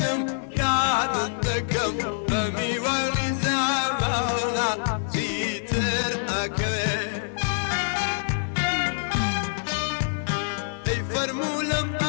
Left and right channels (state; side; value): silent; right; digital silence